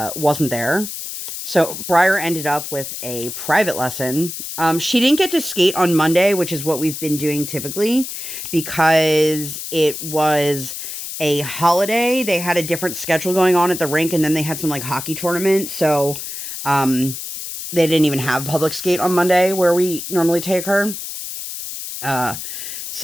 there. So Briar ended up with a private lesson. She didn't get to skate on Monday, which is what we've been doing typically, because it was a holiday. They had a different schedule going on at the rink, and then they had some like hockey tournament. So they didn't even have public skate on Monday where we normally take her.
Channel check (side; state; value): left; noise; hiss, 8 dB below the sound